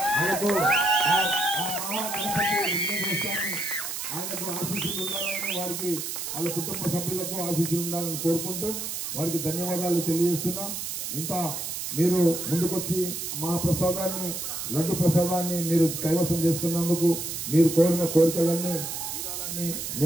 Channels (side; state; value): right; noise; hiss, 5 dB below the sound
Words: ఆయనకు ఆశీస్సులు ఉండాలని వారికి వాళ్ళ కుటుంబ సభ్యులకు ఆశీస్సులు ఉండాలని కోరుకుంటూ వారికి ధన్యవాదాలు తెలియజేస్తున్నా. ఇంత మీరు ముందుకొచ్చి మహాప్రసాదాన్ని లడ్డు ప్రసాదాన్ని మీరు కైవసం చేసుకున్నందుకు మీరు కోరిన కోరికలన్నీ తీరాలని